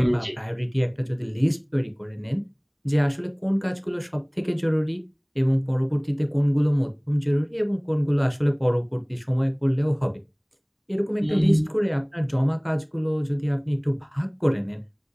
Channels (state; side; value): identical; both; correlation 1.00